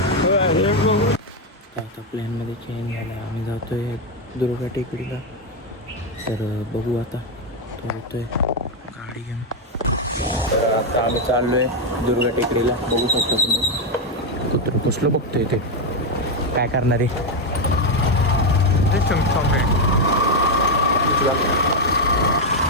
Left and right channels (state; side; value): normal; both; correlation 0.04